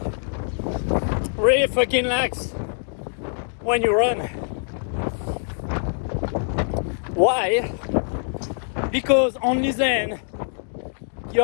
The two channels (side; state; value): right; silent; digital silence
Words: Really fucking relax when you run. Why? Because only then